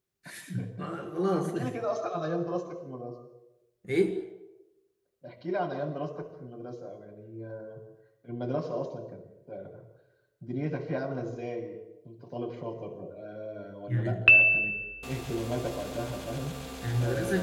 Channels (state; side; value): identical; both; correlation 1.00